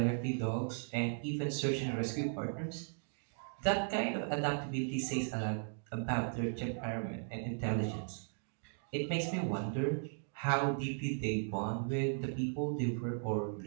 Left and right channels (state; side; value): silent; left; digital silence